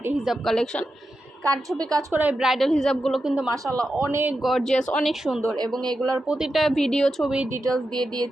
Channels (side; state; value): both; normal; correlation 0.89